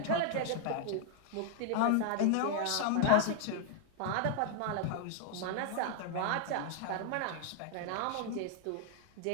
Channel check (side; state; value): both; different; correlation 0.00